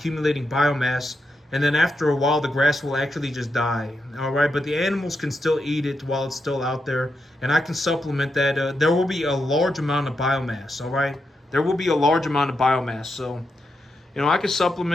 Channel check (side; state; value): both; normal; correlation 0.84